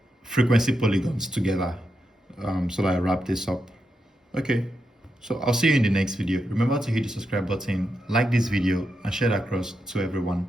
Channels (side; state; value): both; normal; correlation 0.85